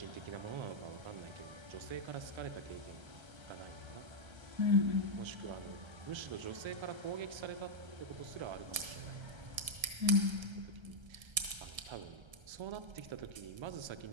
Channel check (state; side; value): late; left; 1.3 ms